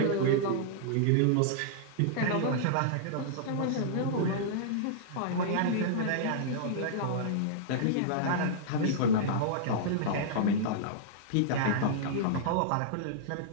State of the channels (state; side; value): different; both; correlation -0.02